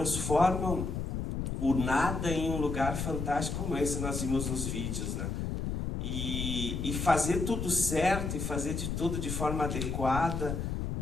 o nada em um lugar fantástico como esse nós vimos nos vídeos, né? E fazer tudo certo, e fazer de tudo de forma adequada,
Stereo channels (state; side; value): noise; left; rumble, 3 dB below the sound